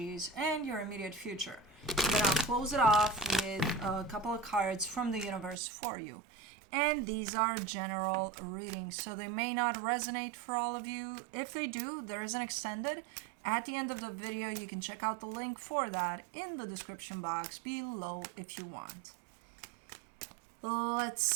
and your immediate future. And then I'll close it off with a couple of cards from the universe for you. And these are general readings, so they may not resonate for all of you. If they do, there is an extended. At the end of the video, you can check out the link for that in the description box below if you want. Let's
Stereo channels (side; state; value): left; drops out; at 5.6 s